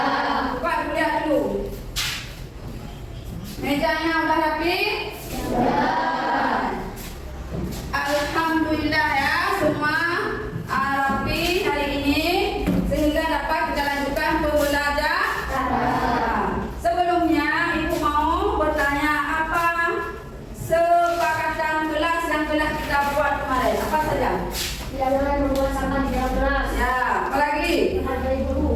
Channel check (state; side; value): identical; both; correlation 1.00